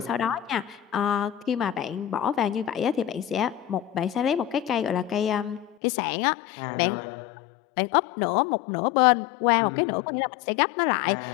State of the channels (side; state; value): right; drops out; at 5.8 s